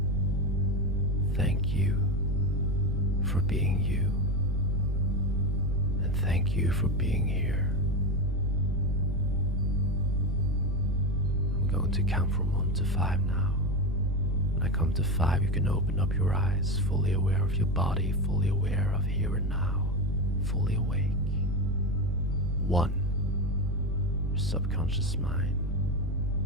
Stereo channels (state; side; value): noise; right; rumble, 13 dB below the sound